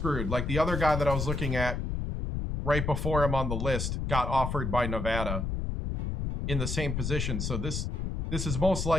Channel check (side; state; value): left; noise; rumble, 2 dB below the sound